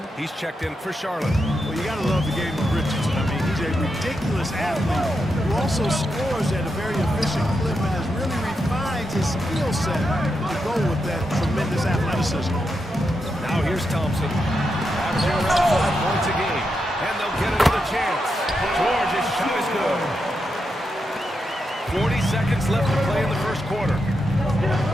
he's checked in for Charlotte. Well, you got to love the game of Richardson. I mean, he's a ridiculous athlete who also scores at a very efficient clip and has really refined his skill set to go with that tremendous athleticism. Now here's Thompson. Averaging around 5 points a game. And they'll get another chance. George's shot is good. 40 seconds left to play in the first quarter.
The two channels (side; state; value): both; normal; correlation 0.85